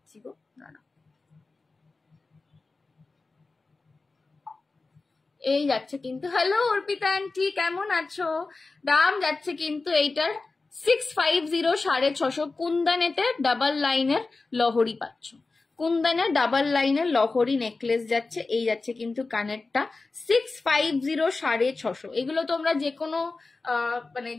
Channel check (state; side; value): quieter; right; 3.7 dB